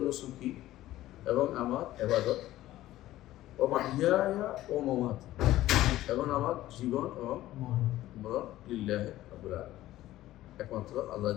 নুসুকি, এবং আমার ইবাদত, ওয়া মাহইয়া ওয়া মামাতি, এবং আমার জীবন এবং মরণ লিল্লাহি রাব্বিল আলামিন, একমাত্র আল্লাহ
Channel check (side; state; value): right; quieter; 15.0 dB